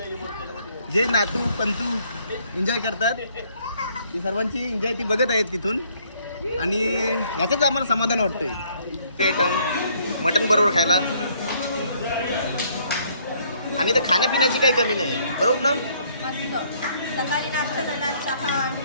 जे नातू पंतू एन्जॉय करतात ती सर्वांची एन्जॉय ती बघत आहेत तिथून. आणि याचंच आम्हाला समाधान वाटतंय. ते आयटम मटण बरोबर खायला आणि तर खाण्यापिण्याची काही कमी नाही, बरोबर ना? मस्त. सकाळी नाश्ता झाला, चहा,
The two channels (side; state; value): both; inverted; correlation -0.65